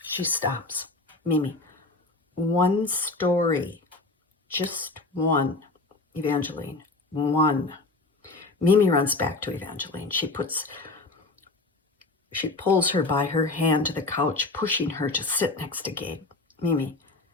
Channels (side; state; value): right; quieter; 3.3 dB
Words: She stops. Mimi, one story. Just one. Evangeline, one. Mimi runs back to Evangeline. She pulls her by her hand to the couch, pushing her to sit next to Gabe. Mimi,